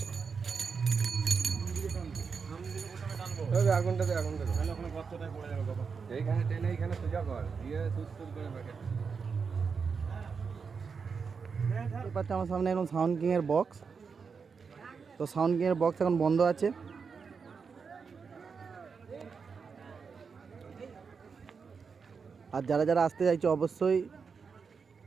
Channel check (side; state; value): left; quieter; 5.6 dB